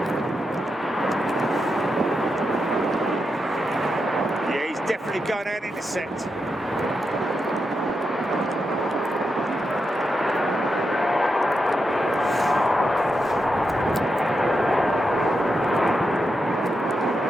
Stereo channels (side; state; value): both; normal; correlation 0.86